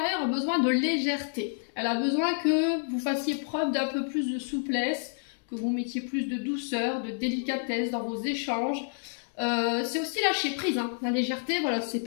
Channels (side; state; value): right; silent; digital silence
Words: a besoin de légèreté. Elle a besoin que vous fassiez preuve d'un peu plus de souplesse, que vous mettiez plus de douceur, de délicatesse dans vos échanges. C'est aussi lâcher prise, hein. La légèreté, voilà, c'est